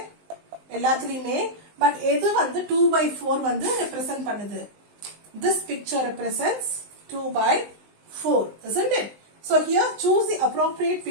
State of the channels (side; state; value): left; late; 19 ms